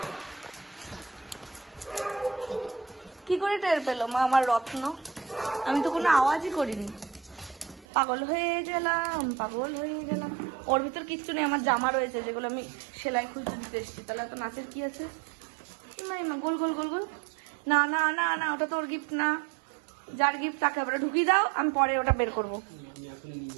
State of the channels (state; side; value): drops out; left; at 7.9 s